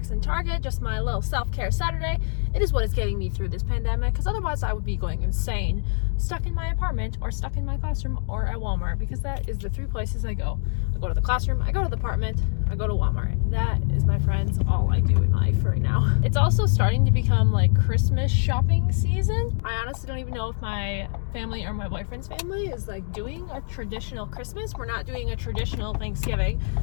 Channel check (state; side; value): silent; right; 62 dB below the other